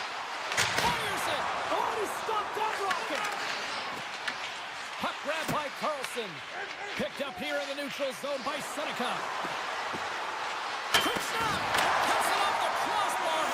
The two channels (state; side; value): identical; both; correlation 1.00